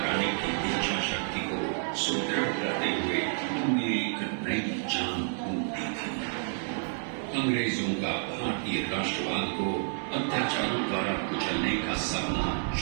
की इच्छा शक्ति को सुदृढ़ करते हुए उन्हें एक नई जान फूंक दी थी। अंग्रेजों का भारतीय राष्ट्रवाद को अत्याचारों द्वारा कुचलने का सपना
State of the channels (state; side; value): silent; left; 58 dB below the other